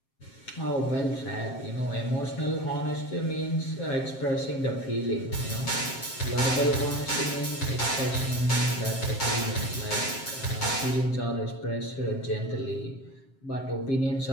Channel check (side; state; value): right; late; 7.6 ms